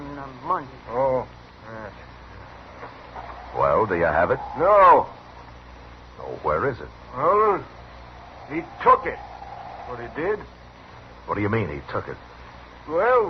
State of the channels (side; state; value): both; identical; correlation 1.00